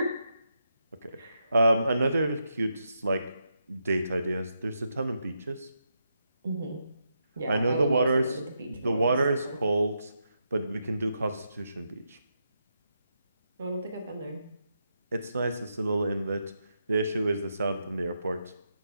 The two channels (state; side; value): inverted; both; correlation -0.83